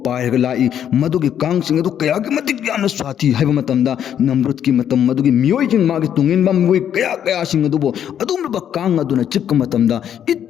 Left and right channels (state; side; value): quieter; right; 9.5 dB